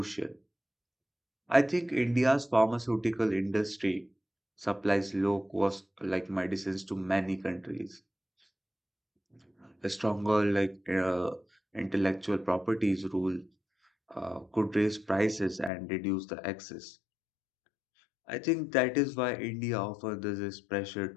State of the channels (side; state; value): right; drops out; at 15.7 s